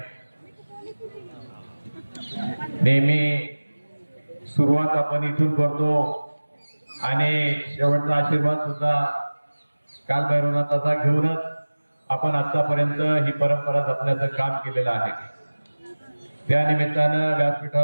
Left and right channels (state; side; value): inverted; both; correlation -1.00